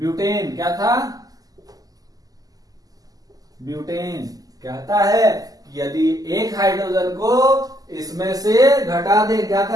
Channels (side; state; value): left; late; 0.17 ms